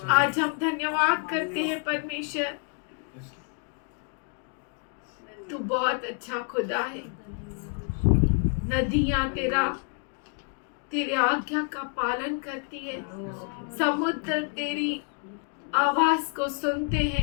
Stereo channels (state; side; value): quieter; right; 39.0 dB